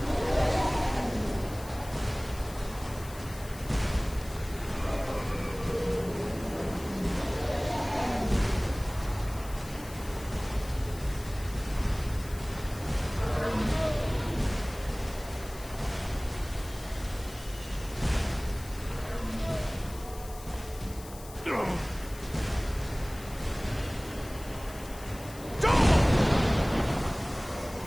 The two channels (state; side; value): noise; left; hiss, 17 dB below the sound